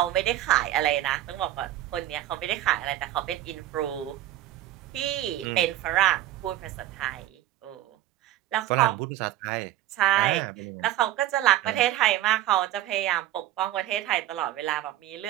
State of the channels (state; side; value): quieter; left; 13.8 dB